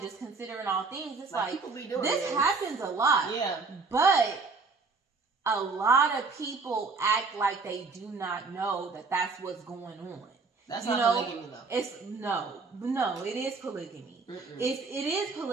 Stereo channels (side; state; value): left; quieter; 4.3 dB